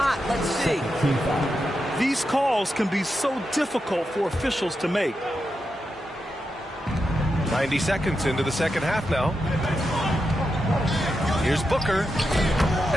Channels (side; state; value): both; normal; correlation 0.87